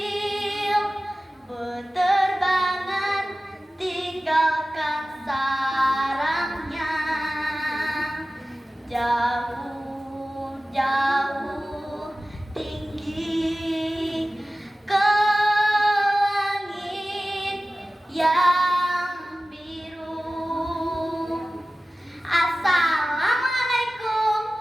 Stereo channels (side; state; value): both; normal; correlation 0.96